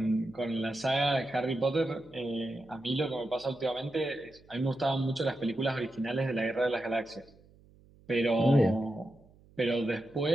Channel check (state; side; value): noise; right; hum, 27 dB below the sound